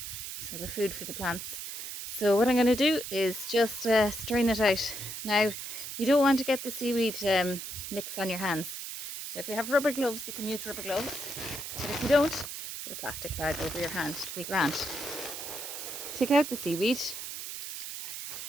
so the food for the plants. So what I'm going to do is just strain it out. Now you don't want to get the seaweed mix on your hands, so if you have rubber gloves you can use rubber gloves, but if you don't, put a plastic bag over your hand to be grand. Take out the seaweed.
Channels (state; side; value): noise; right; hiss, 7 dB below the sound